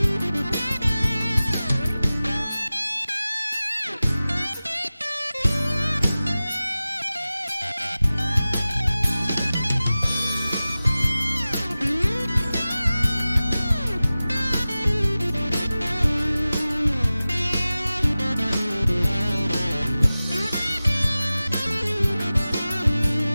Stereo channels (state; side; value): inverted; both; correlation -0.96